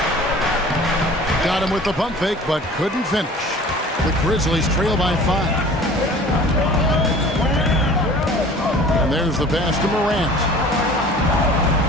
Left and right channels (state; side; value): normal; both; correlation 0.45